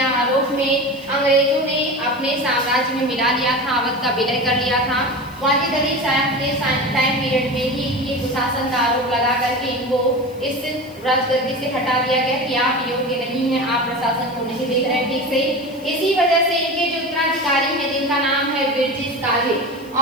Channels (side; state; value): left; noise; hiss, 26 dB below the sound